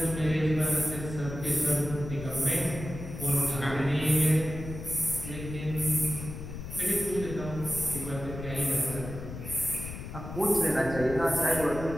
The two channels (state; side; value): noise; left; rumble, 9 dB below the sound